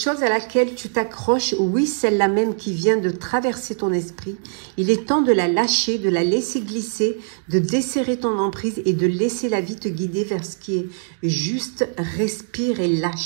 à laquelle tu t'accroches, oui, celle-là même qui vient de traverser ton esprit, il est temps de la lâcher, de la laisser glisser, de desserrer ton emprise et de laisser la vie te guider vers ce qui est juste. Respire et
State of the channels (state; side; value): silent; left; digital silence